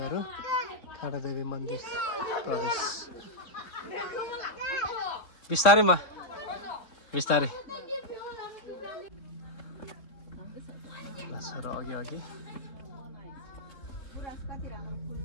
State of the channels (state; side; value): late; right; 3.5 ms